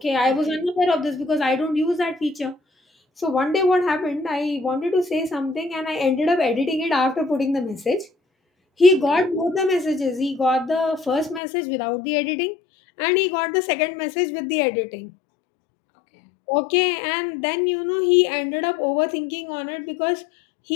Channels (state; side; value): drops out; right; at 11.4 s